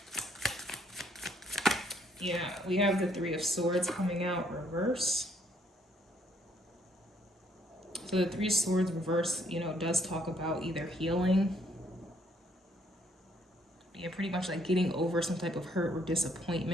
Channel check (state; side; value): normal; both; correlation 0.68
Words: Yeah, we have the Three of Swords coming out reverse. So the Three of Swords reverse, you know, does talk about either healing, yeah, pretty much like getting over some type of hurt or